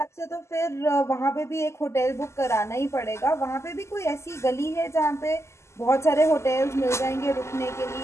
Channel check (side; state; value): right; late; 0.13 ms